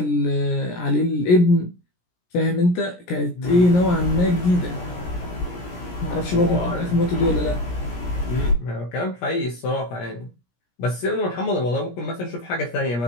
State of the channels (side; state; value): right; late; 17 ms